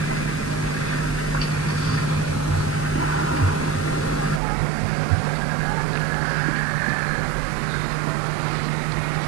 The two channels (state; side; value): drops out; left; at 4.4 s